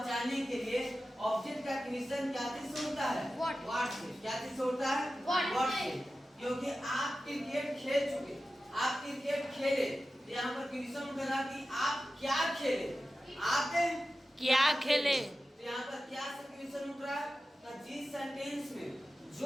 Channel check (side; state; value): both; normal; correlation 0.94